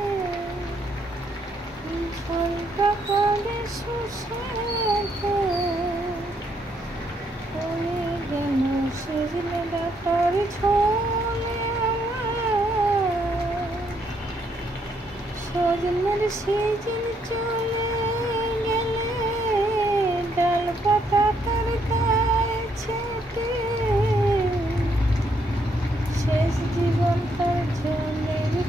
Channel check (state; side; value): normal; both; correlation 0.73